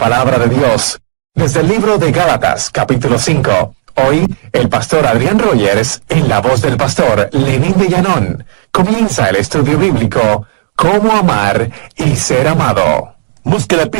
de Dios. Desde el libro de Gálatas, capítulo 5. Hoy, el pastor Adrián Rogers, en la voz del pastor Lenín de Llanón, comienza el estudio bíblico Cómo amar y ser amado. Busque la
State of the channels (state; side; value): silent; left; digital silence